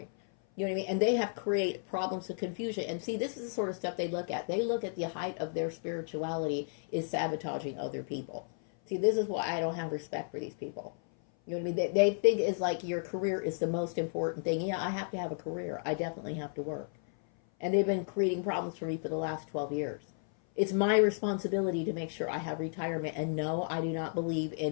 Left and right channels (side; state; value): right; silent; 56 dB below the other